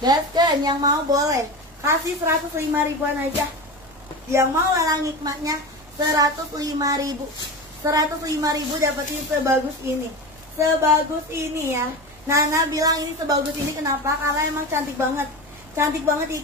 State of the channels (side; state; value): right; noise; rumble, 26 dB below the sound